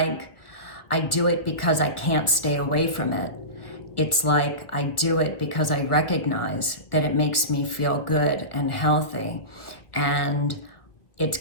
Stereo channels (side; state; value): right; late; 1.7 ms